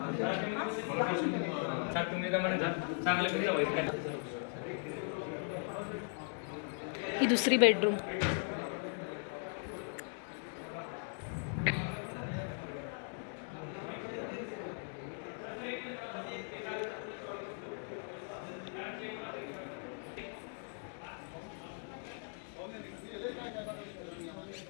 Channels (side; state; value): right; silent; 52 dB below the other